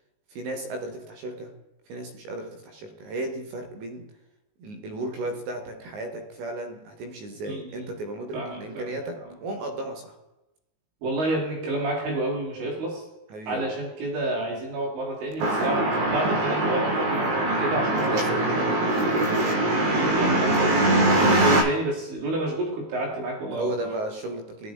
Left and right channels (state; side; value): late; left; 19 ms